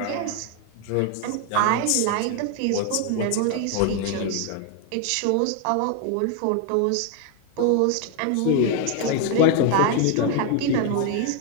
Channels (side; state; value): both; different; correlation 0.00